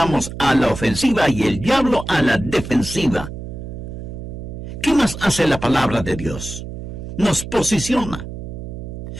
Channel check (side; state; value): right; noise; hum, 9 dB below the sound